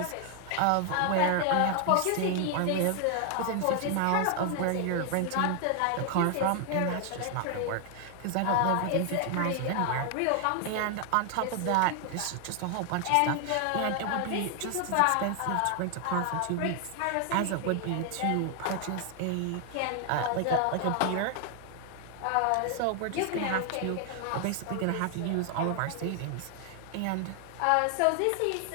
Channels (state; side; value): different; both; correlation 0.00